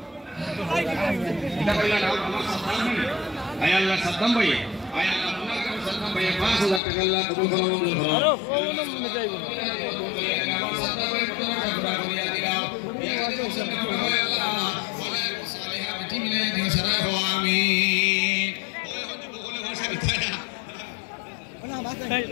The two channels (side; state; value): right; drops out; at 6.8 s